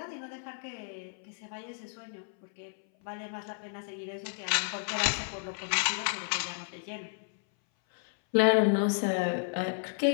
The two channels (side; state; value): right; silent; 56 dB below the other